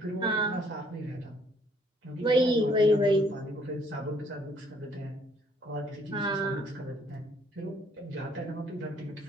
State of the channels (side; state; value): both; normal; correlation 0.64